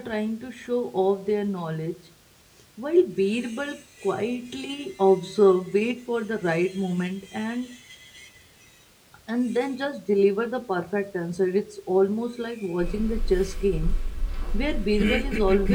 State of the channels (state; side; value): identical; both; correlation 1.00